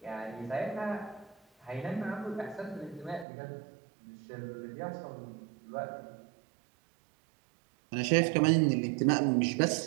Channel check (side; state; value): left; drops out; at 3.2 s